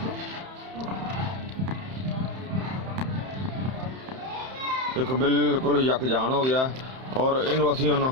एक बिल्कुल यकजान हो गया और इनू असीं हुण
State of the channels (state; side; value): late; left; 31 ms